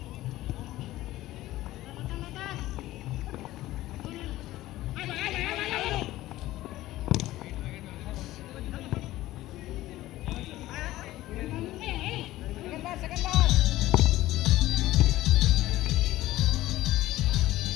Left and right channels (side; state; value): right; quieter; 16.1 dB